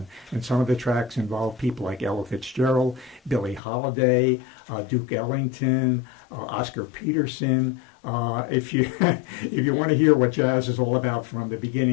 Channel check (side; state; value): right; drops out; at 3.6 s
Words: And some of the tracks involve people like Ella Fitzgerald, Billie Holiday, Duke Ellington, Oscar Peterson. If you if you want to hear what jazz is all about from the